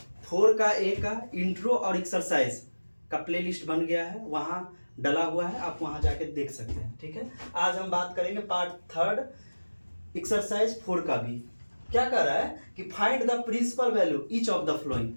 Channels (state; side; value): inverted; both; correlation -1.00